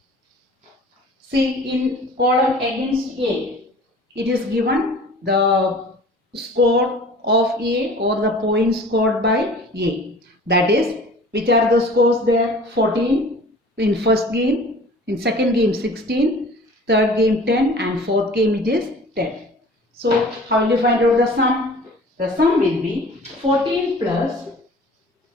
See, in column against A, it is given the score of A or the points scored by A. That is, which are the scores there? 14 in first game, in second game 16, third game 10 and fourth game it is 10. So how will you find out the sum? The sum will be 14 plus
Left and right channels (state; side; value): normal; both; correlation 0.45